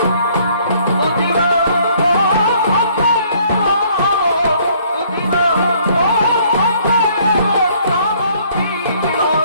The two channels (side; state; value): both; inverted; correlation -0.62